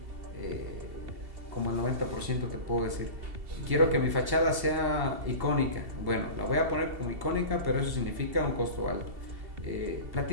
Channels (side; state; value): left; late; 2.7 ms